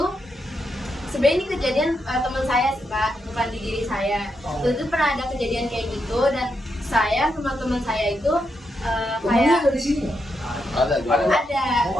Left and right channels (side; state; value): both; normal; correlation 0.82